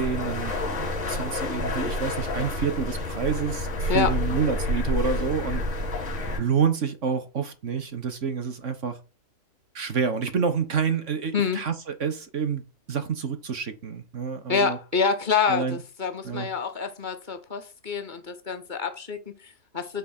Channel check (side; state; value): left; late; 3.6 ms